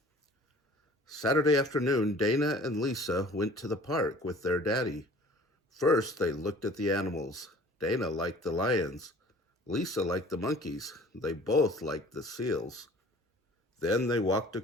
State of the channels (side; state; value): both; normal; correlation 0.48